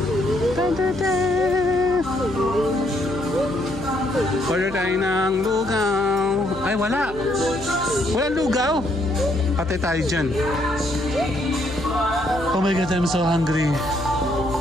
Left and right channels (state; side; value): noise; left; hum, 15 dB below the sound